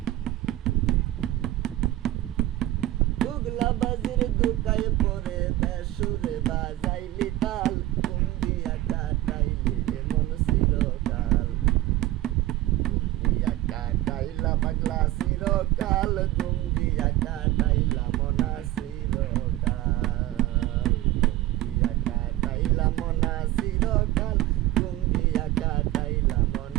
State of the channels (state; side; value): quieter; left; 15.6 dB